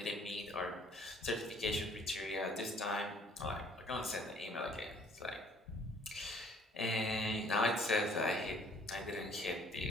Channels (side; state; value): both; normal; correlation 0.58